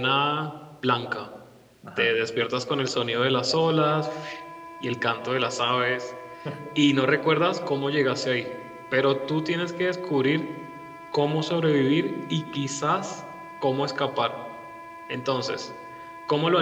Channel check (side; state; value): both; identical; correlation 1.00